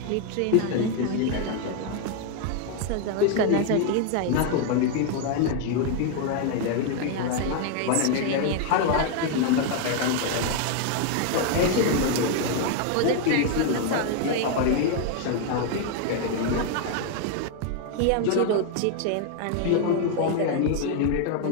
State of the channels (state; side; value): different; both; correlation 0.01